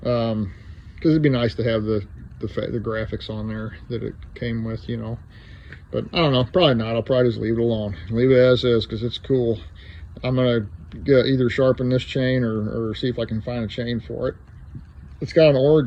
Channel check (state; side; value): identical; both; correlation 1.00